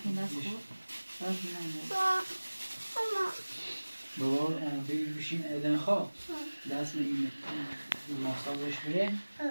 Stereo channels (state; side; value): inverted; both; correlation -1.00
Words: دست خود باز نمیدونم بابا بگیر بشین ایدن خواه دست من این ماساژش بره